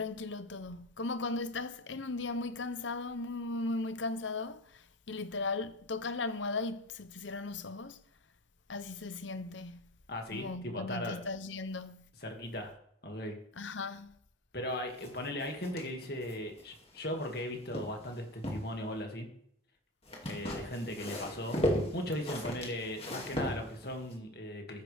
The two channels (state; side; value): normal; both; correlation 0.26